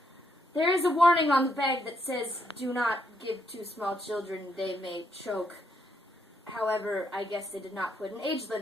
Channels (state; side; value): normal; both; correlation 0.76